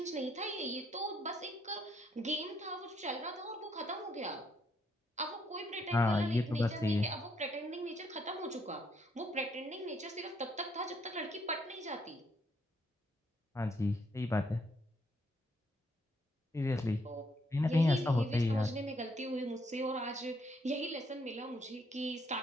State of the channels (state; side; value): normal; both; correlation 0.72